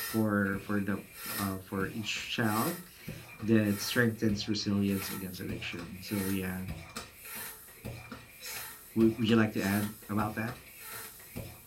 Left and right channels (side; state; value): both; identical; correlation 1.00